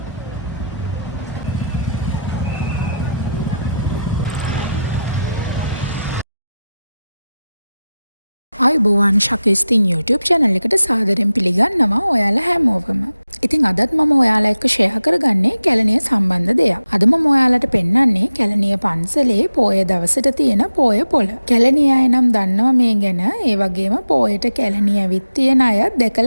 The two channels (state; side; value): inverted; both; correlation -0.90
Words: ආයුබෝවන් ශකස්තින් YouTube channel එකට සාදරයෙන් පිළිගන්නවා ඔයාලා හැමෝවම. ඉතින් අදත් මම ඔයාලා එක්ක ෂෙයා කරගන්නේ කැලණිය සම්බන්ධ දෙයක්. අද මම ඔයාලට පෙන්වන්නේ කැලණිය පන්සලේ පොය දවසට තියෙන පොය පොළ. කැලණිය අය නම් දන්නවා මේ ගැන. ඒ වගේම පොයට කැලණිය ඇවිත් තියෙන අය